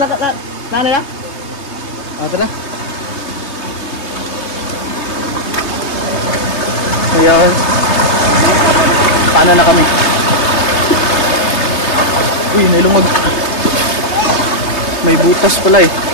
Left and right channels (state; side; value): late; right; 3.2 ms